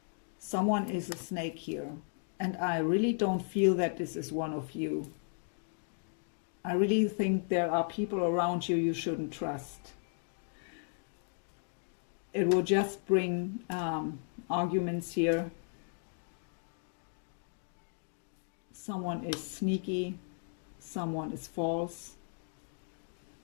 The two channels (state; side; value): silent; right; digital silence